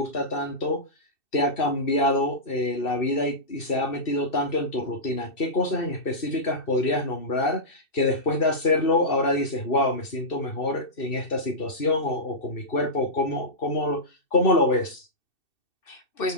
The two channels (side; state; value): right; late; 2.6 ms